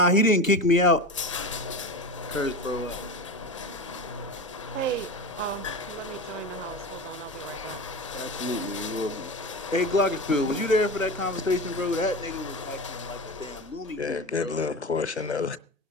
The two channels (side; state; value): both; normal; correlation 0.27